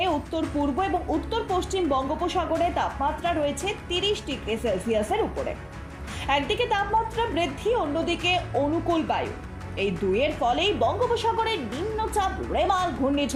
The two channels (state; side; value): identical; both; correlation 1.00